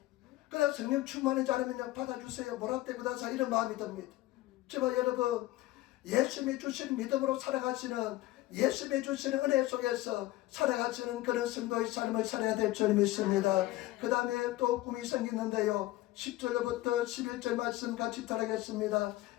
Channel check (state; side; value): quieter; right; 17.0 dB